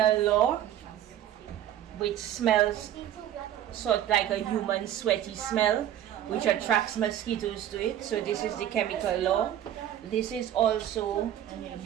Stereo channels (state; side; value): quieter; left; 11.4 dB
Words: law which smells sort of like a human sweaty smell, which attracts mosquitoes to it. So this is the chemical law. This is also